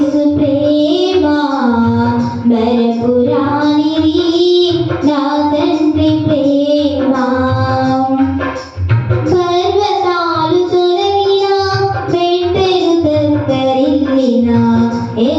ప్రేమ మరపురానిది, నా తండ్రి ప్రేమ. పర్వతాలు తొలగినా, మెట్టెలు తత్తరిల్లినా,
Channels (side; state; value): both; identical; correlation 1.00